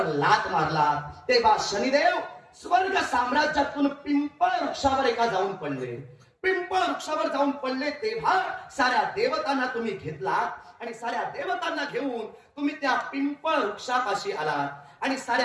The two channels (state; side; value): identical; both; correlation 1.00